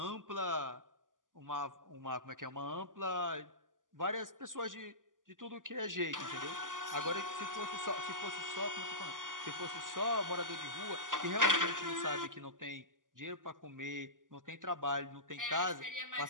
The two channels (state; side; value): late; left; 0.88 ms